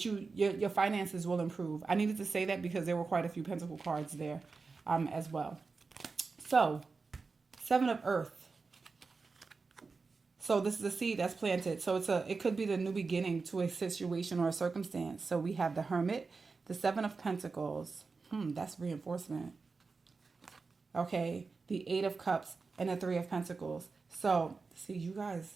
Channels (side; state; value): left; quieter; 4.4 dB